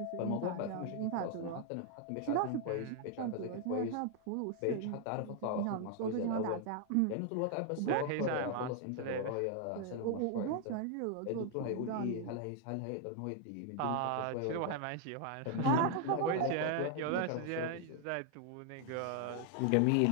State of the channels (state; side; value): different; both; correlation 0.00